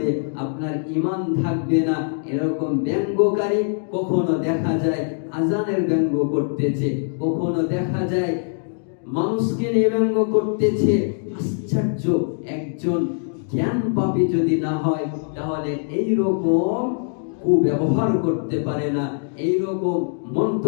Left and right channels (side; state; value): right; silent; digital silence